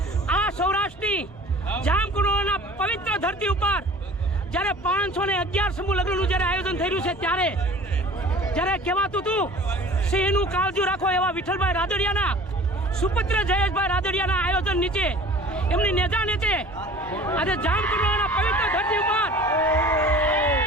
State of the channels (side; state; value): both; normal; correlation 0.44